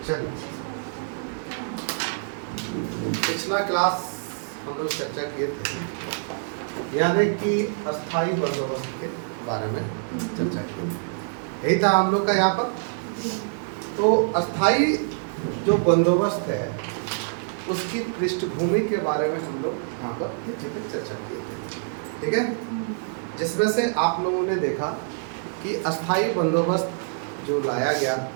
चलिए, पिछला क्लास हम लोग चर्चा किए थे यानी कि अस्थाई बंदोबस्त के बारे में चर्चा की, यही था हम लोग का यहाँ पर। तो अस्थाई जो बंदोबस्त है उसकी पृष्ठभूमि के बारे में हम लोग यहाँ पर चर्चा किए थे, ठीक है। जिसमें से आप लोगों ने देखा कि अस्थाई बंदोबस्त जो लाया गया,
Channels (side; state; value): left; silent; digital silence